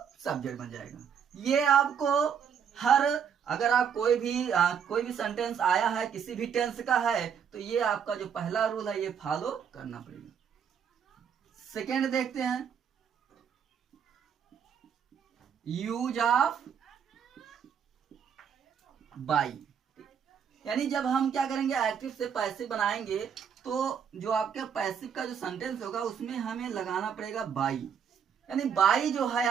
सब्जेक्ट बन जाएगा। ये आपको हर, अगर आप कोई भी सेंटेंस आया है किसी भी टेंस का है तो ये आपका जो पहला रूल है ये फॉलो करना पड़ेगा। सेकेंड देखते हैं, यूज ऑफ बाई। यानी जब हम क्या करेंगे, एक्टिव से पैसिव बनाएंगे तो जो आपके पैसिव का जो सेंटेंस होगा उसमें हमें लगाना पड़ेगा बाई। यानी बाई जो है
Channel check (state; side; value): quieter; left; 7.6 dB